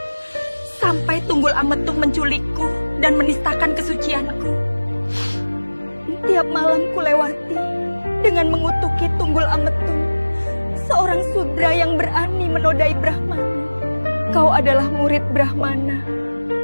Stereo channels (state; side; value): inverted; both; correlation -1.00